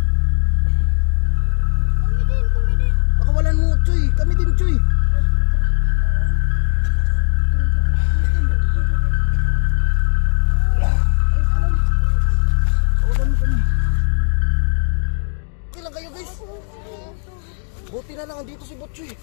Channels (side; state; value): right; silent; digital silence